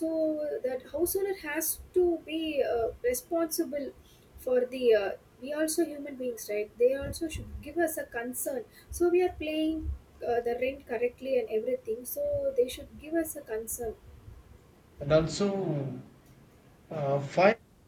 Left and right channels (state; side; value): identical; both; correlation 1.00